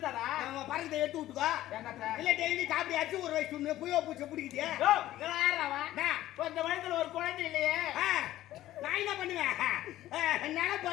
நம்ம பறக்கத்தை எடுத்து விட்டுக்கோ. என்னத்த இல்ல டெய்லி காப்பி அடிச்சு ஒரு வயசு சொன்னு புயோ பூச்சை பிடிக்குது. ஓ யாரவா இந்த வயித்துல ஒரு குழந்தை இல்லையே நான் என்ன பண்ணுவேன்?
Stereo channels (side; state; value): right; quieter; 14.4 dB